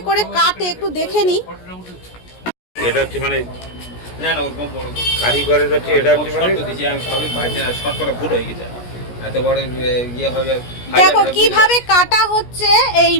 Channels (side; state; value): right; late; 17 ms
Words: করে কাটে একটু দেখে নিই। এটা হচ্ছে মানে না না ওরকম বড় কারিগরের হচ্ছে, এটা হচ্ছে মানে দিছি আমি সবই বাজে না, শর্ট করে ভুল হয়ে গেছে, এত বড় ইয়ে হবে। দেখো কিভাবে কাটা হচ্ছে এই